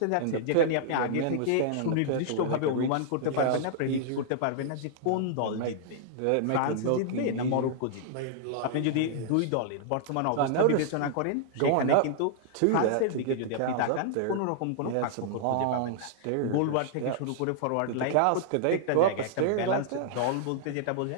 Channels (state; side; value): different; both; correlation -0.01